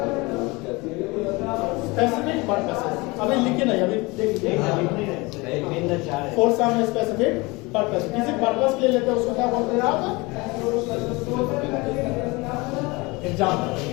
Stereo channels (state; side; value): quieter; right; 24.6 dB